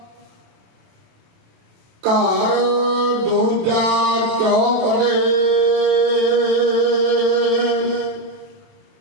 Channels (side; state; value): left; late; 27 ms